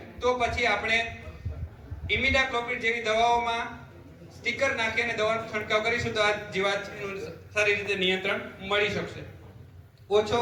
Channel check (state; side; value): identical; both; correlation 1.00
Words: તો પછી આપણે ઇમિડાક્લોપ્રિડ જેવી દવાઓમાં સ્ટીકર નાખી અને દવાનો છંટકાવ કરીશું તો આ જીવાતનું સારી રીતે નિયંત્રણ મળી શકશે. ઓછો